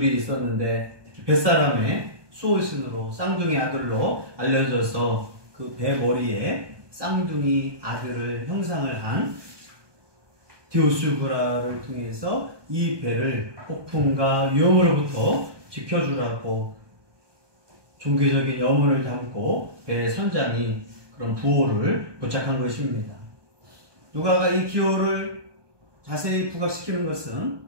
있었는데 뱃사람의 수호신으로 쌍둥이 아들로 알려져서 그 배 머리에 쌍둥이 아들을 형상을 한 디오스구라를 통해서 이 배를 폭풍과 위험으로부터 지켜주라고 종교적인 염원을 담고 배 선장이 그런 부호를 부착한 것입니다. 누가가 이 기호를 자세히 부각시키는 것은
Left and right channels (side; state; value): left; late; 1.2 ms